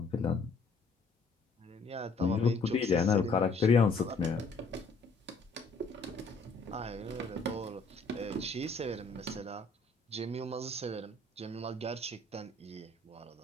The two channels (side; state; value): right; quieter; 3.7 dB